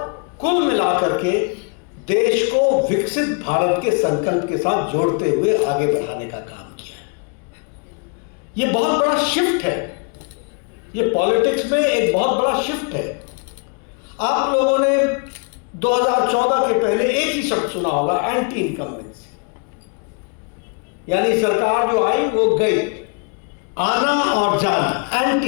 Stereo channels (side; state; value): right; quieter; 36.2 dB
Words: कुल मिलाकर के देश को विकसित भारत के संकल्प के साथ जोड़ते हुए आगे बढ़ाने का काम किया। यह बहुत बड़ा शिफ्ट है, यह पॉलिटिक्स में एक बहुत बड़ा शिफ्ट है। आप लोगों ने 2014 के पहले एक ही शब्द सुना होगा, एंटी इनकम्बेंसी। यानी सरकार जो आई वो गई, आना और जाना,